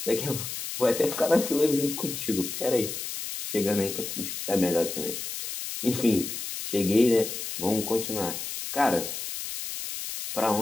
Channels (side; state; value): left; noise; hiss, 6 dB below the sound